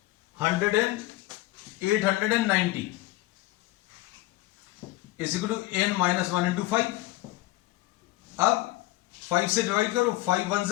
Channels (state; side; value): quieter; right; 17.9 dB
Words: 890 is equal to n minus 1 into 5। अब 5 से डिवाइड करो, 5 1